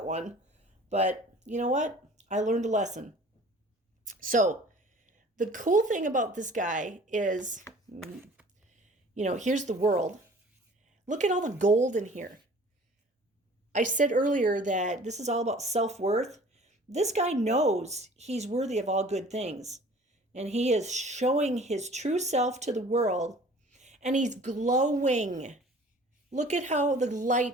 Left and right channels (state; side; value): normal; both; correlation 0.48